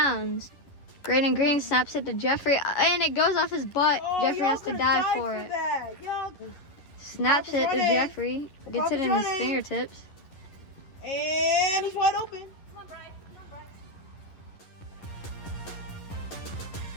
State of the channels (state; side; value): late; right; 11 ms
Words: Graydon Green snaps it to Jeffrey and it goes off his butt. Jeffrey has to dive for it. Snaps it to Jeffrey. Gets it in his fingertips. And he's wide open.